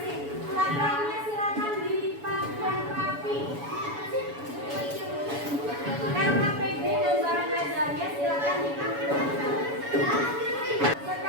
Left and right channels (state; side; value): late; left; 7.0 ms